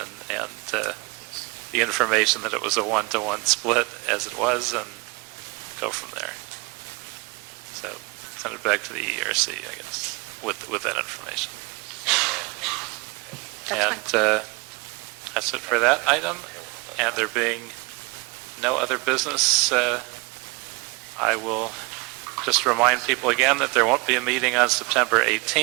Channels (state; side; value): quieter; left; 27.3 dB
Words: and the information that it was a 1-to-1 split as it was, and go from there. So send it back to the ERC, I guess, with that information. That's fine. And that's it for that item. And there being no other business, I will just remind people again that there won't be a meeting on September